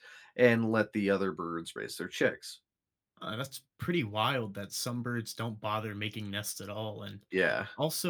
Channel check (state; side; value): identical; both; correlation 1.00